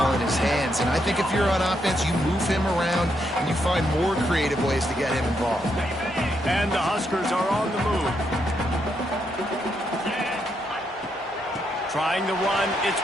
in his hands. And I think if you're on offense, you move him around and you find more creative ways to get him involved. And the Huskers are on the move. Trying to run, it's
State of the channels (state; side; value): normal; both; correlation 0.79